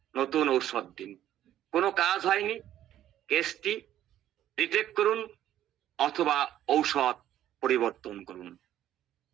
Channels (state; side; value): quieter; left; 12.1 dB